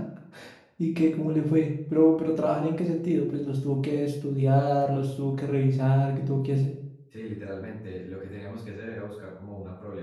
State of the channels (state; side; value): identical; both; correlation 1.00